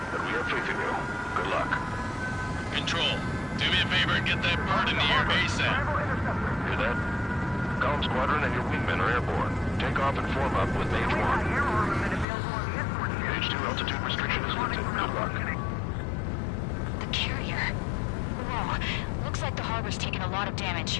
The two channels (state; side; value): drops out; right; at 12.2 s